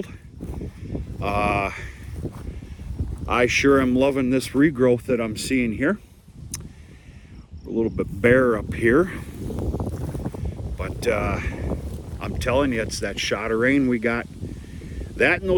I sure am loving this regrowth that I'm seeing here. A little bit bare up here, but I'm telling you, it's that shot of rain we got. That and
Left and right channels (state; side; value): identical; both; correlation 1.00